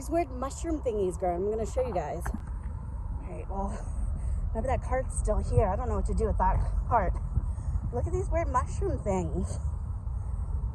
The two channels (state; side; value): identical; both; correlation 1.00